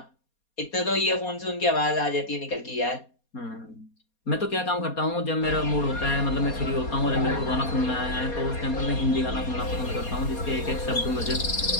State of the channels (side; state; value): right; late; 4.2 ms